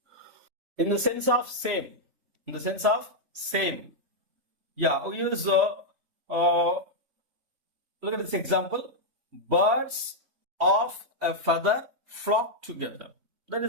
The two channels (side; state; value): left; late; 3.0 ms